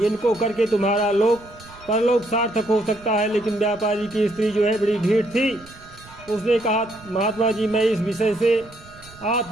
करके तुम्हारा लोक परलोक सार्थक हो सकता है। लेकिन व्यापारी की स्त्री जो है बड़ी ढीठ थी। उसने कहा, महात्मा जी, मैं इस विषय से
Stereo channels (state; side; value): noise; right; rumble, 23 dB below the sound